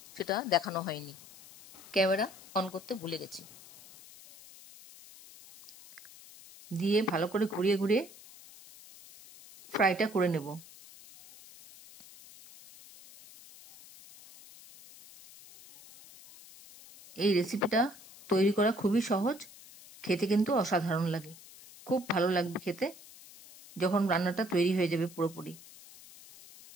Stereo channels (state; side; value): noise; left; hiss, 20 dB below the sound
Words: সেটা দেখানো হয়নি, ক্যামেরা অন করতে ভুলে গেছি। দিয়ে ভালো করে ঘুরিয়ে ঘুরিয়ে ফ্রাইটা করে নেব। এই রেসিপিটা তৈরি করা খুবই সহজ, খেতে কিন্তু অসাধারণ লাগে, খুব ভালো লাগবে খেতে যখন রান্নাটা তৈরি হয়ে যাবে পুরোপুরি।